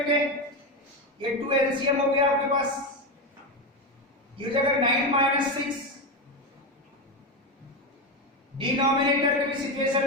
ये 2 एलसीएम हो गया आपके पास, ये हो जाएगा 9 माइनस 6, डिनोमिनेटर के भी सिचुएशन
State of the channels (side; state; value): both; normal; correlation 0.14